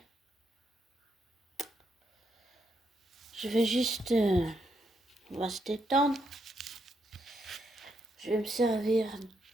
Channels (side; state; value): both; normal; correlation 0.79